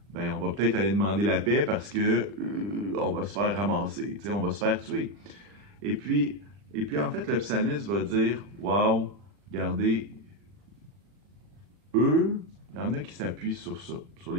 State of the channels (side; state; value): left; late; 40 ms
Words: ben on va peut-être aller demander la paix parce que on va se faire ramasser, on va se faire tuer. Et puis en fait, le psalmiste va dire, « Wow, regardez, eux, il y en a qui s'appuient sur ça, sur